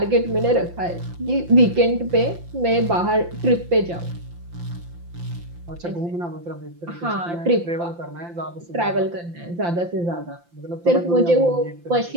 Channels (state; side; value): late; left; 5.8 ms